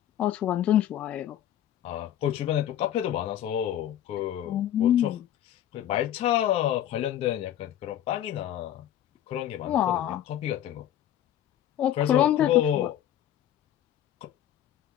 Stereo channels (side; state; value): right; quieter; 11.4 dB